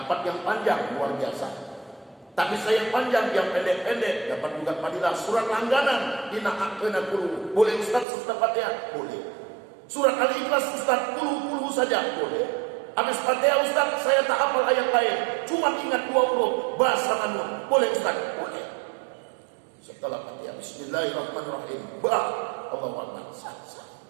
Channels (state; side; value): drops out; left; at 8.1 s